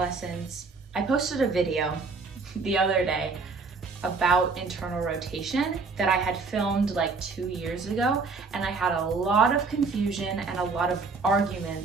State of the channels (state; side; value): quieter; left; 4.4 dB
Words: I posted a video the other day about internal rotation that I had filmed like 2 years ago, and I had a lot of confusion and a lot of